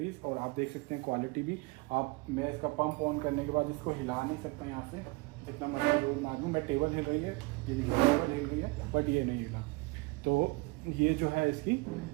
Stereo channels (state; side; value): quieter; left; 24.6 dB